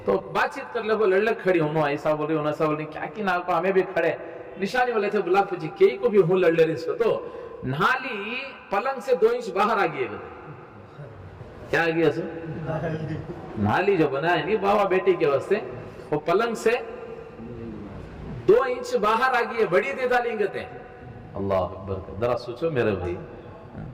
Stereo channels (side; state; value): both; identical; correlation 1.00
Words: تو بات چیت کر لگو لڑ کھڑی ہوں ایسا بول رہی ایسا بول رہی کیا کی نا کو ہمیں بھی کھڑے نشانی والے تھے بلا پوچھی کئی کو بھی ہوں لڑ رہی اس کو تو نالی پلنگ سے 2 انچ باہر آ گئی. کیا آ گیا سو نالی جو بنا ہے نہیں بابا بیٹی کے واسطے وہ پلنگ سے 2 انچ باہر آ گئی ہے بڑی دے ڈالیں گے. اللہ اکبر ذرا سوچو میرے بھائی